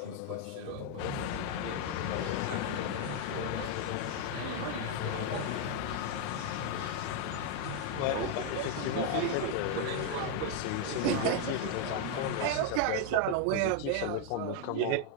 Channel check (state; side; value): different; both; correlation 0.01